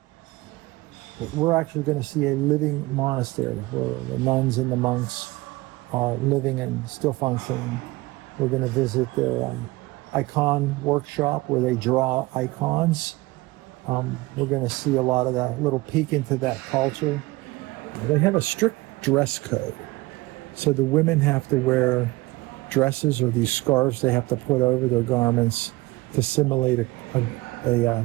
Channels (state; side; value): quieter; left; 21.1 dB